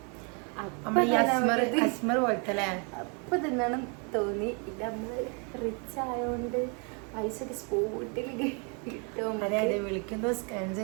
അപ്പൊ തിന്നണം തോന്നി. ഇത് നമ്മള് റിച്ച് ആയോണ്ട് പൈസ ഒക്കെ സ്പോട്ടിൽ കിട്ടും. വിളിക്കുന്നു, സ്കാൻ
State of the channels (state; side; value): quieter; left; 35.9 dB